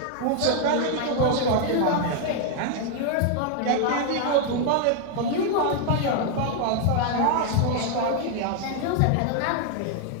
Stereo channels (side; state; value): both; different; correlation 0.00